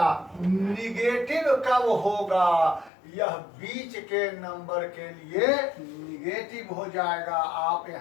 निगेटिव कब होगा, यह बीच के नंबर के लिए निगेटिव हो जाएगा। आप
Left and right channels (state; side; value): drops out; right; at 2.9 s